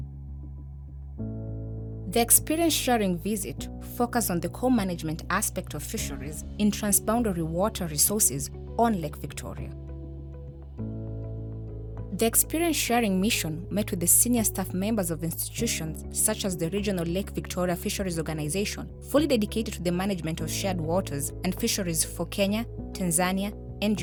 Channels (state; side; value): identical; both; correlation 1.00